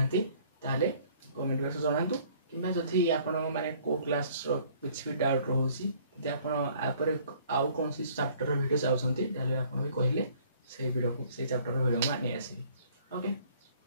ताले कमेंट बॉक्स जनातु किंबा जदि आपण माने को क्लास रो कुछ भी डाउट रहउसी जे आपण आपर आउ कोन सी चैप्टर वीडियो चाहउछंती ताले आपण भी कहले से वीडियो को से चैप्टर वीडियो में नहीं आसी ओके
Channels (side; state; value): both; inverted; correlation -0.57